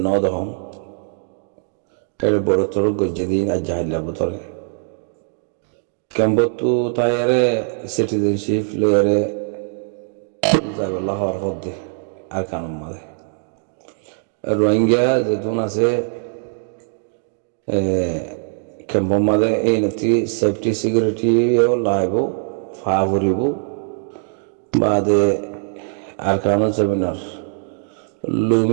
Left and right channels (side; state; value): left; silent; 65 dB below the other